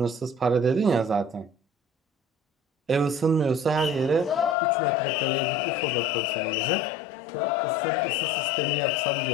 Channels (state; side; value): drops out; right; at 4.5 s